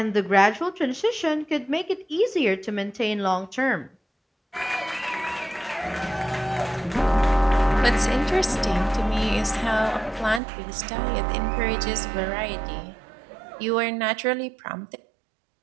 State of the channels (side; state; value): left; drops out; at 10.4 s